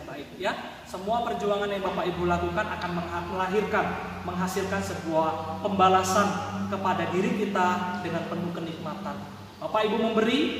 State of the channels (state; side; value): identical; both; correlation 1.00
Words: baik, ya. Semua perjuangan yang Bapak Ibu lakukan akan menghasilkan sebuah pembalasan kepada diri kita dengan penuh kenikmatan. Bapak Ibu memberi,